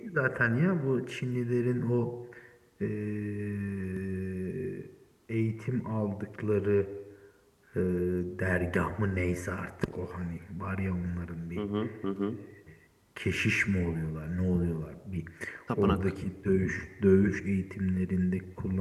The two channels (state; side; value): identical; both; correlation 1.00